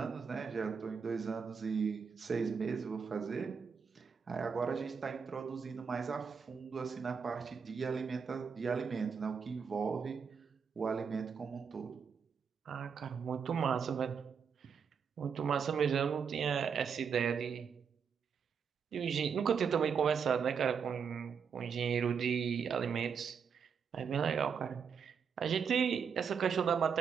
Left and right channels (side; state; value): left; quieter; 6.5 dB